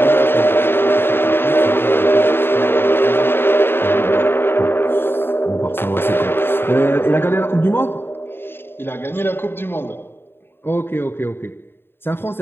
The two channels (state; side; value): late; right; 0.11 ms